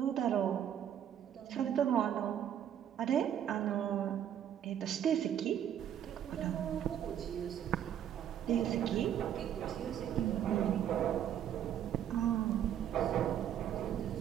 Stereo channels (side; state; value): left; quieter; 10.0 dB